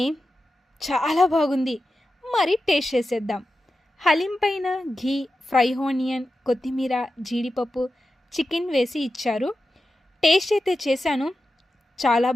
చాలా బాగుంది. మరి టేస్ట్ చేసేద్దాం. హలీం పైన ఘీ, ఫ్రై ఆనియన్, కొత్తిమీర, జీడిపప్పు, చికెన్ వేసి ఇచ్చారు. టేస్ట్ అయితే చేశాను, చాలా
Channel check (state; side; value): normal; both; correlation 0.91